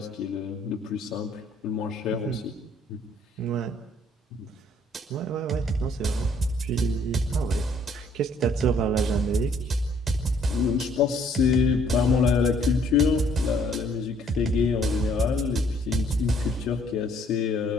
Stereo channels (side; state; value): both; normal; correlation 0.63